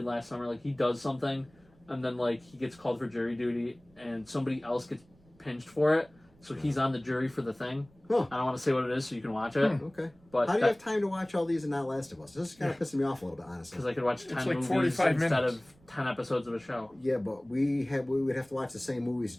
Last Summer. Like he does something, and then like he gets called for jury duty, and somebody else gets pinched for it. So he's on the jury for the thing. Huh. I don't want to say what it is, so you can watch it. Okay. But how do you have time to watch all these and not Last of Us? This is kind of pissing me off a little bit, honestly. Because I could watch 10 It's like movies 45 instead minutes. of 10 episodes of a show. Yeah, but we would have to watch the same movies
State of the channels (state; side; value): noise; right; rumble, 29 dB below the sound